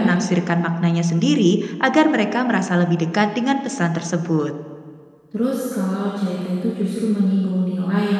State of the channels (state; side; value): identical; both; correlation 1.00